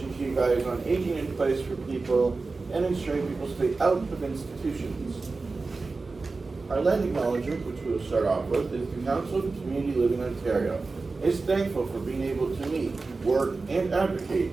to you guys on aging in place for people and ensuring people stay out of institutions. Our land acknowledgement, which we will start off with, is the Council of Community Living Ontario is thankful for being able to meet, work, and advocate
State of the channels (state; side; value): quieter; left; 3.9 dB